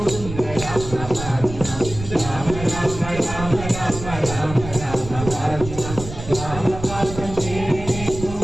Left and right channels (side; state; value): right; noise; rumble, 10 dB below the sound